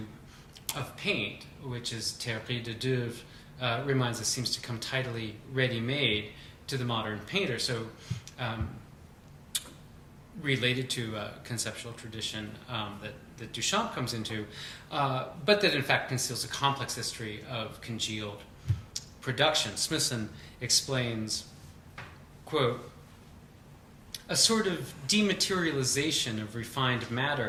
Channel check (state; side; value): identical; both; correlation 1.00